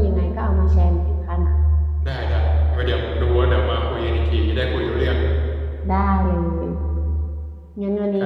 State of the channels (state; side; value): identical; both; correlation 1.00